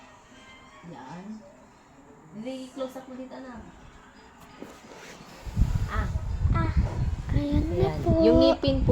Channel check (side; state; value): both; identical; correlation 1.00